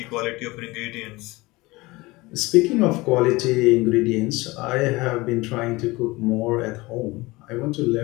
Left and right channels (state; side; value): quieter; right; 21.7 dB